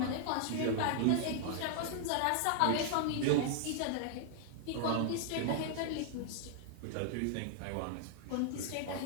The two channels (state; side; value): different; both; correlation -0.01